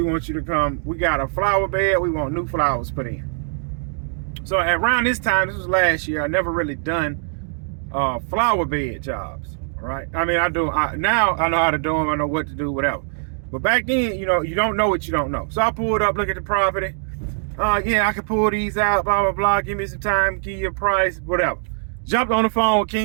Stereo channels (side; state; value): left; silent; digital silence